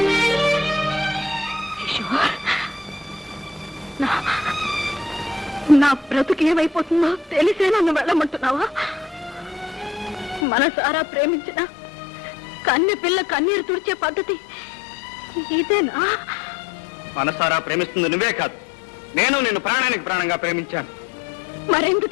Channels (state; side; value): drops out; right; at 10.5 s